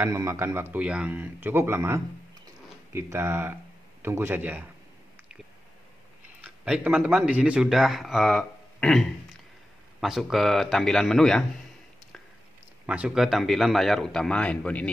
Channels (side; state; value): both; normal; correlation 0.91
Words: memakan waktu yang cukup lama. Kita tunggu saja. Baik teman-teman, di sini sudah masuk ke tampilan menu ya. Masuk ke tampilan layar utama handphone